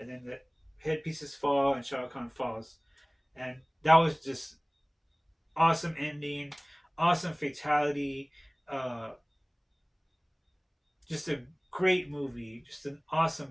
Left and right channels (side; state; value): both; identical; correlation 1.00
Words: then the headpieces fall, and Shao Kahn falls, and that was just awesome ending, awesome fatality, uh, just a great movie, just an awesome